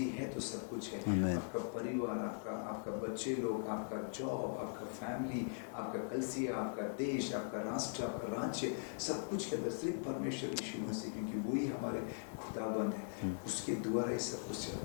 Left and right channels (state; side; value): silent; right; digital silence